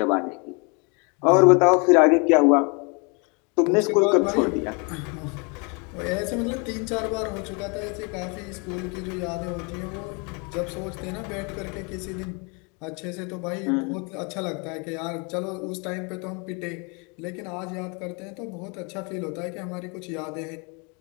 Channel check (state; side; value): quieter; right; 32.6 dB